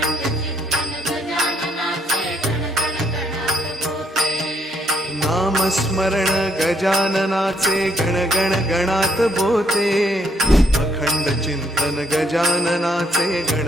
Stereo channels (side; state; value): both; normal; correlation 0.71